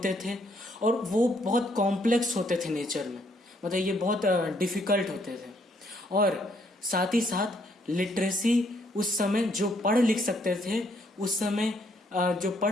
थे और वो बहुत कॉम्प्लेक्स होते थे नेचर में, मतलब ये बहुत डिफिकल्ट होते थे। और साथ ही साथ लिटरेसी, उस समय जो पढ़ लिख सकते थे, उस समय जो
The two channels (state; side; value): normal; both; correlation 0.69